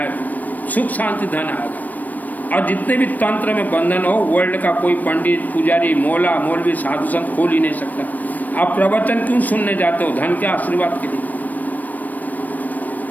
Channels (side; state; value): right; late; 0.083 ms